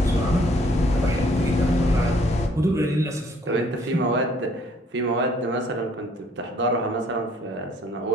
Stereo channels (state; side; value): normal; both; correlation 0.62